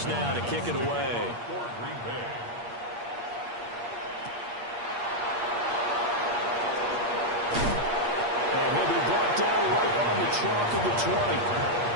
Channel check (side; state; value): left; late; 8.5 ms